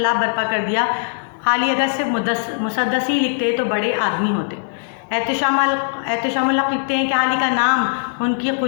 برپا کر دیا۔ حالی اگر صرف مسدسی لکھتے تو بڑے آدمی ہوتے۔ احتشام الحق لکھتے ہیں کہ حالی کا نام ان کی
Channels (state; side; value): silent; right; digital silence